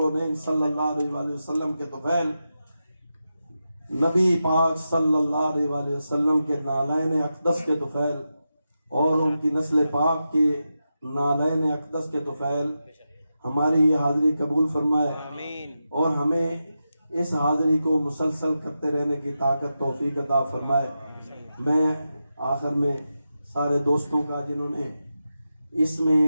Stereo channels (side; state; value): both; inverted; correlation -0.90